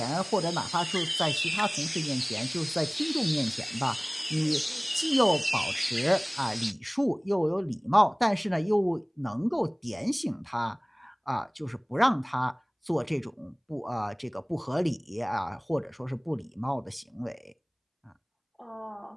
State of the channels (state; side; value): identical; both; correlation 1.00